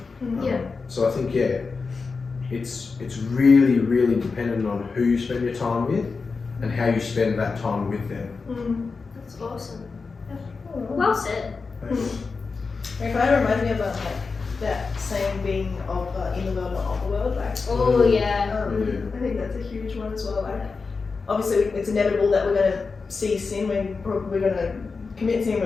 So I think, it's really, really dependent on who you spend your time with and how you spend that time with them. That's awesome. Well said. It kind of reminds me of that saying being of in the world, not of the world. Like, I think that's a huge one as well. Like, obviously, it's inevitable that we're going to see sin. We're going to commit sin.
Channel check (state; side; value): quieter; right; 4.6 dB